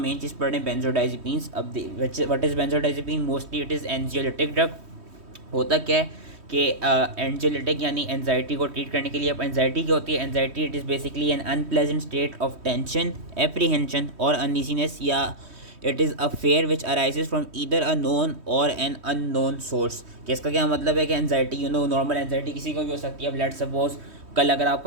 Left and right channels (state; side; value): late; left; 3.1 ms